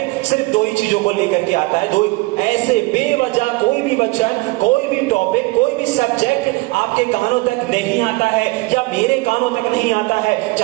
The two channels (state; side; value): quieter; left; 23.5 dB